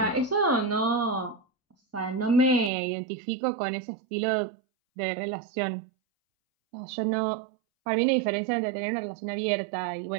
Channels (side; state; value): left; drops out; at 2.7 s